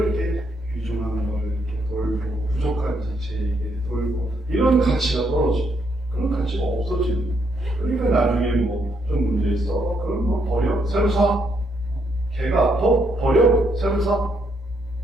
이렇게 귀중한 걸 이렇게 돌고 부족한 지체에게 돌고 이런 가치가 떨어지고 그런 가치가 없어지는. 그러니까 나중에 뭐 좀 문제 있어. 그럼 뭐 버려. 새로 사. 개가 아파. 버려. 새로 사.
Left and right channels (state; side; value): normal; both; correlation 0.75